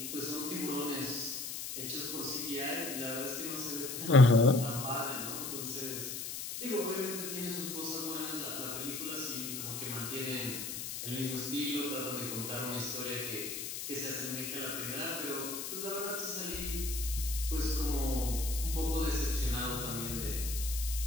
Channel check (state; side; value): noise; left; hiss, 5 dB below the sound